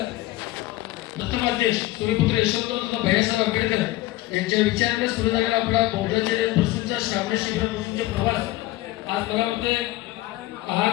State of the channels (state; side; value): quieter; right; 17.2 dB